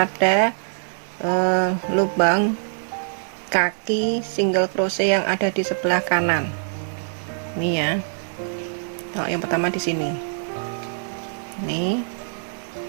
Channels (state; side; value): silent; left; 63 dB below the other